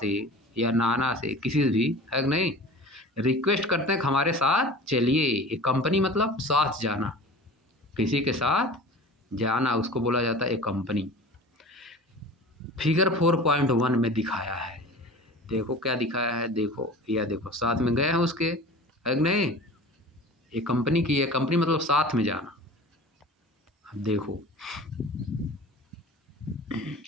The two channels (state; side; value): normal; both; correlation 0.39